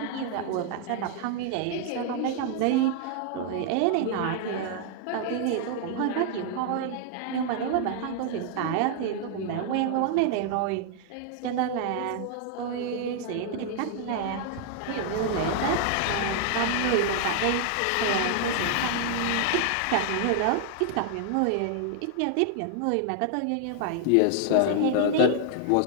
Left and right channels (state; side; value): different; both; correlation 0.00